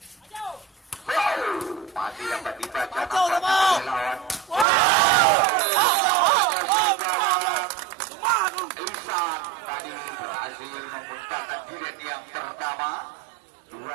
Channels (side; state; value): left; drops out; at 4.7 s